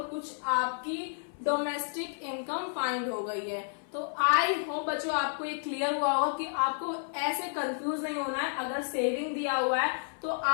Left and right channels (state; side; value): silent; right; 57 dB below the other